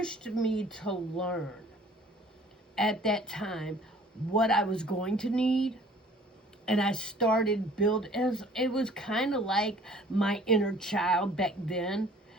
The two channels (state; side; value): normal; both; correlation 0.53